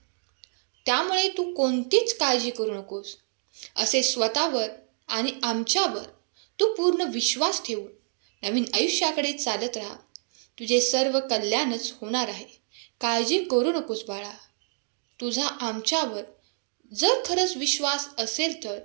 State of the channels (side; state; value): left; silent; digital silence